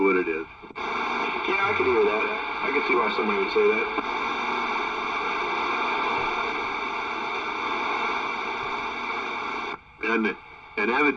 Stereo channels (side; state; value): both; identical; correlation 1.00